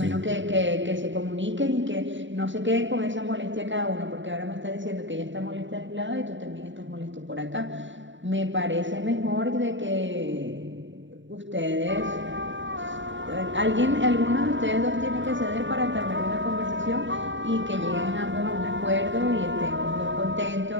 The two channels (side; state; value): left; late; 0.54 ms